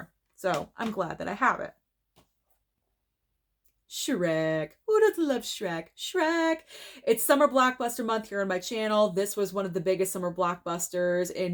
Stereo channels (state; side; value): identical; both; correlation 1.00